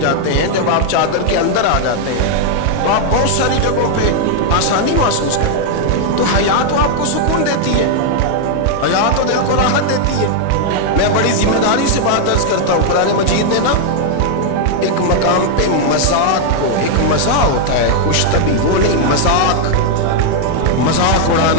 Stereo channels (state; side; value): different; both; correlation 0.00